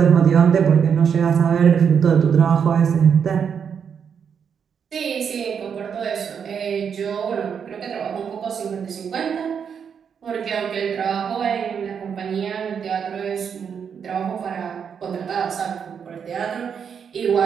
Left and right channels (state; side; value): quieter; left; 7.2 dB